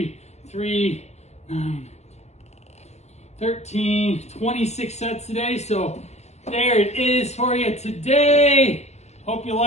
3, 9, 13, 26 sets today. So there it is for you today. Hope you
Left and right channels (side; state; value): right; late; 0.32 ms